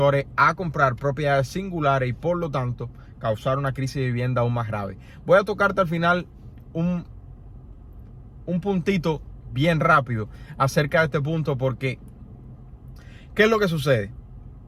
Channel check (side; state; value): both; identical; correlation 1.00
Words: a comprar propiedades singulares y por lo tanto causar una crisis de vivienda aún más grave. Voy a tocarte al final un puntito bien rápido acerca de este punto porque ¿qué es lo que sucede?